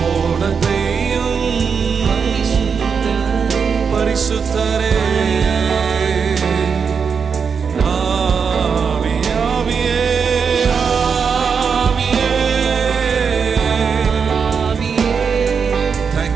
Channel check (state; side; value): quieter; left; 6.1 dB